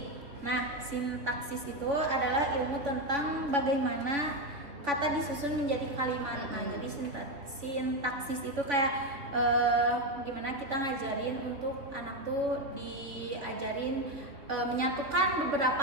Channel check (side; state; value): left; late; 3.2 ms